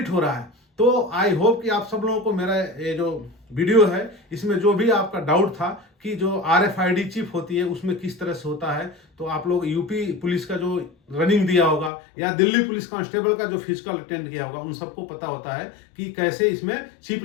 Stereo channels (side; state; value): right; drops out; at 11.9 s